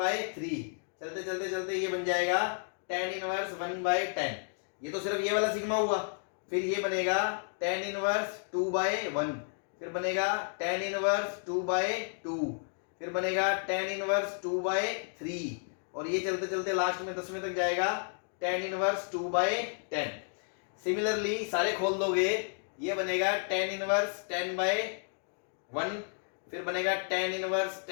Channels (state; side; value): silent; right; 56 dB below the other